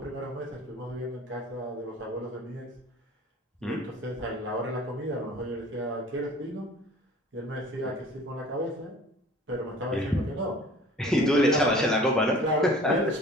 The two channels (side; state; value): both; normal; correlation 0.47